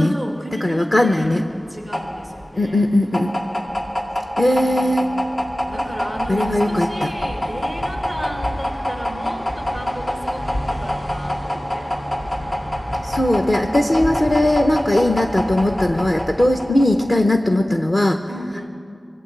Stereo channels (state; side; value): normal; both; correlation 0.96